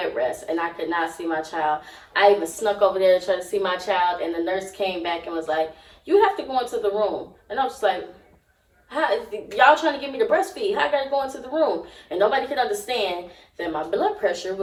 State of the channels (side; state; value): both; identical; correlation 1.00